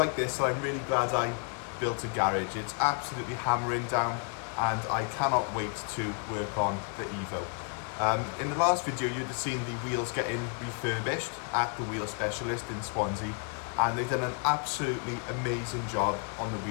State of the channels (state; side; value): quieter; right; 37.6 dB